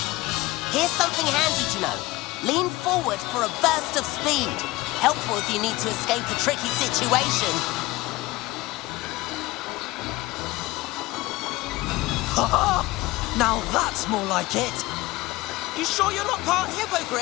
Here's something handy to know. Lean forward for a burst of speed. Helpful if you need to escape a tricky situation. Ha! Now that's more like it. You sure you're not part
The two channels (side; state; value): right; quieter; 19.8 dB